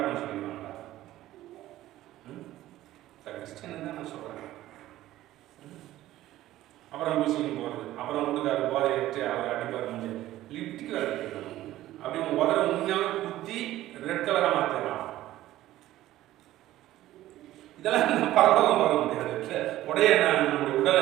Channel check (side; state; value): left; quieter; 14.8 dB